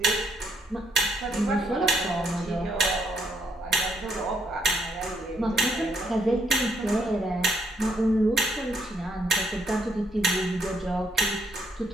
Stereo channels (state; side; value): normal; both; correlation 0.73